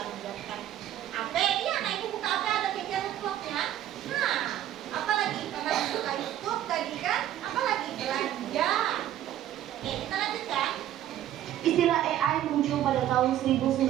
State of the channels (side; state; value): left; quieter; 12.1 dB